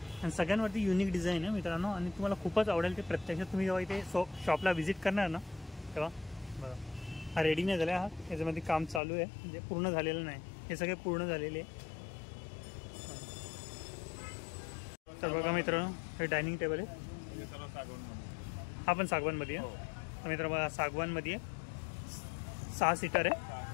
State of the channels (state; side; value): drops out; right; at 9.0 s